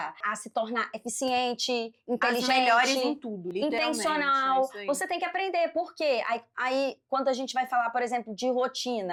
a se tornar eficiente, inteligente, as melhores em tudo, intencional. é isso aí. Você tem que aprender. Por quê? Aí, quando a gente vai falar, por exemplo, de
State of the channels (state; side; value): identical; both; correlation 1.00